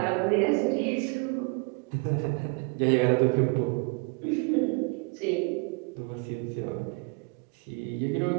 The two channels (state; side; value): quieter; left; 32.4 dB